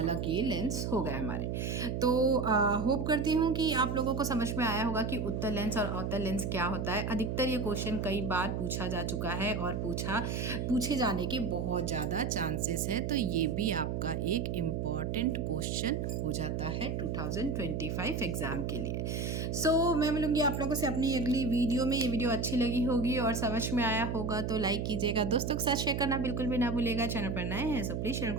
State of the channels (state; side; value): noise; right; hum, 1 dB below the sound